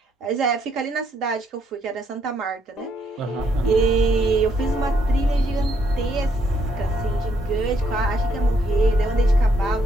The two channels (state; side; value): normal; both; correlation 0.73